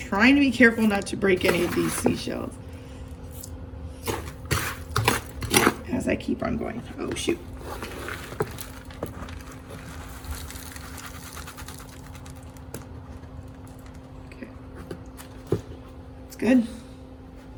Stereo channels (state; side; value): identical; both; correlation 1.00